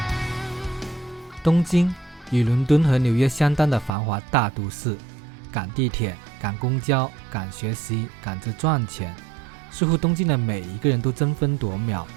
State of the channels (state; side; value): drops out; left; at 3.9 s